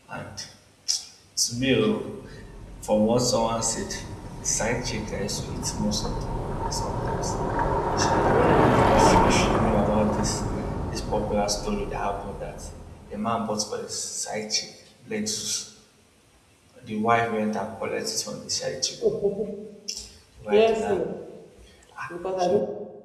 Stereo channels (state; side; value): identical; both; correlation 1.00